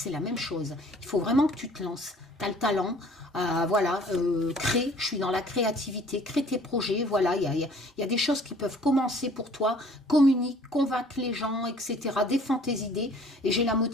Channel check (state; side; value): normal; both; correlation 0.54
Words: la même chose. Il faut vraiment que tu te lances. Tu as le talent, voilà, crée, je suis dans la créativité, crée tes projets, voilà, il y a des choses qui peuvent commencer pour toi, communique, convaincre les gens, etc. Défends tes idées et j'ai la